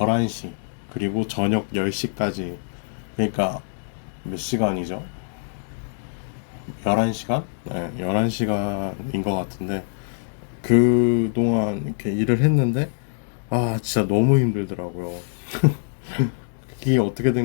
그리고 저녁 10시까지, 그러니까 몇 시간이죠? 11시간? 네, 11시간인 것 같은데 그동안 이렇게 일을 했는데 진짜 너무 힘들더라고요. 이게 어떻게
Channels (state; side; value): silent; right; digital silence